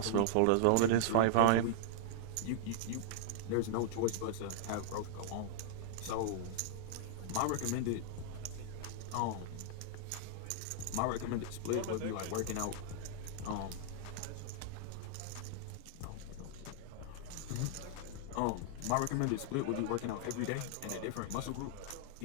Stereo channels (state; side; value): different; both; correlation -0.01